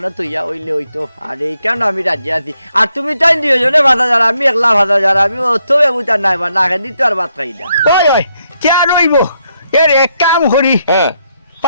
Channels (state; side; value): inverted; both; correlation -0.77